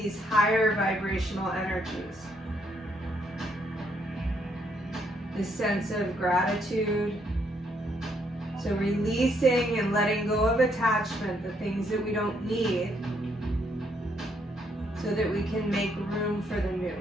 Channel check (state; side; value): normal; both; correlation 0.72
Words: higher vibrational energies. This sense of gratitude. So releasing and letting go of attachment, the things that we don't need, so that we can make room for the new.